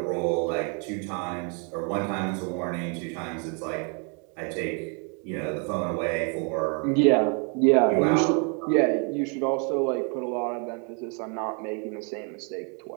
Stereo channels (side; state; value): left; quieter; 37.2 dB